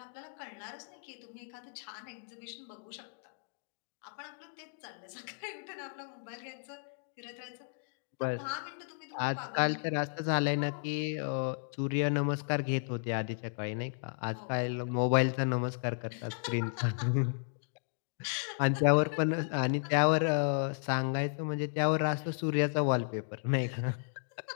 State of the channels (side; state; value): right; silent; digital silence